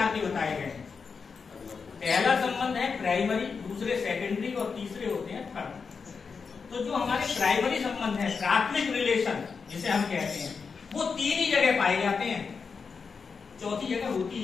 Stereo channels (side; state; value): right; quieter; 5.4 dB